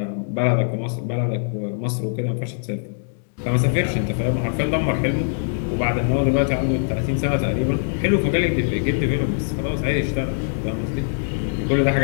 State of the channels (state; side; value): silent; right; digital silence